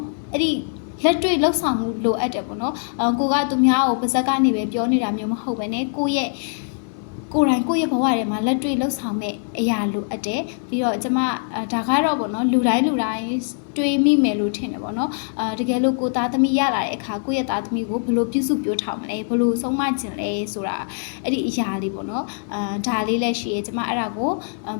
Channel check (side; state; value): right; silent; 62 dB below the other